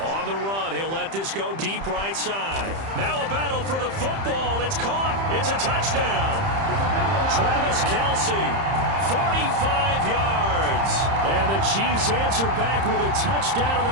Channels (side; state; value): left; late; 30 ms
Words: On the run, he'll let this go deep right side. Now a battle for the football. It's caught. It's a touchdown. Travis Kelce, 45 yards. And the Chiefs answer back with a touchdown of